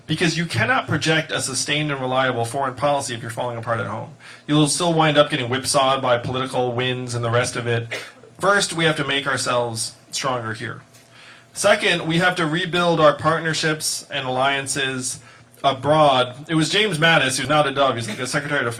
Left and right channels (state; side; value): identical; both; correlation 1.00